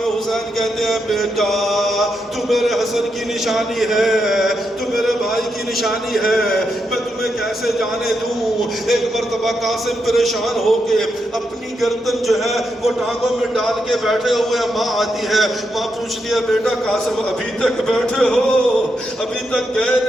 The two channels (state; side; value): normal; both; correlation 0.83